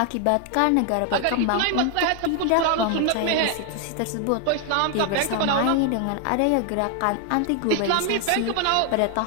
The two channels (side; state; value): both; different; correlation 0.00